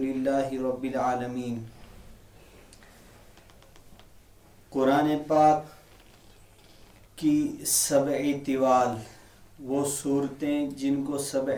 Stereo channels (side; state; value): both; identical; correlation 1.00